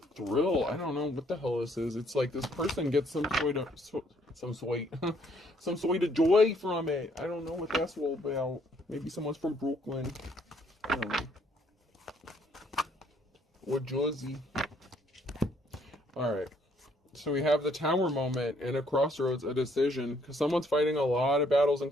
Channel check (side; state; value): both; normal; correlation 0.66